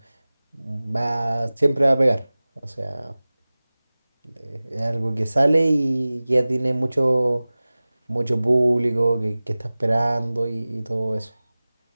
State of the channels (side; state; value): both; inverted; correlation -0.98